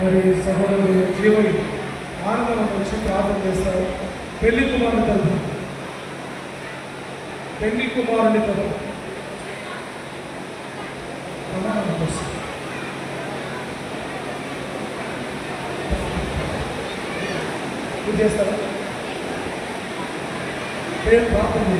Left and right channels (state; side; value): identical; both; correlation 1.00